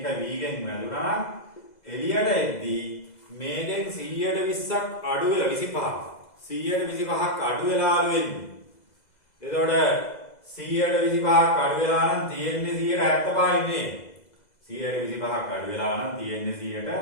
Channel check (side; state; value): right; late; 2.0 ms